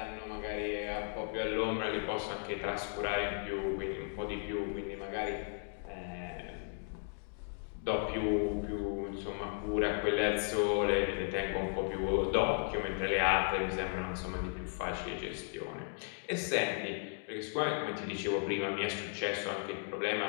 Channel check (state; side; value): silent; right; 54 dB below the other